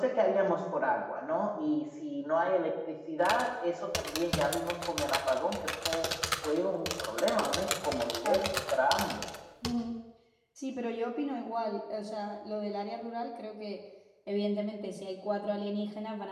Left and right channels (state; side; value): identical; both; correlation 1.00